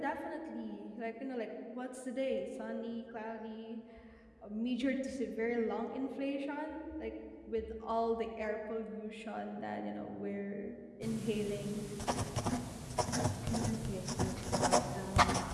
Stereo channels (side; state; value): both; identical; correlation 1.00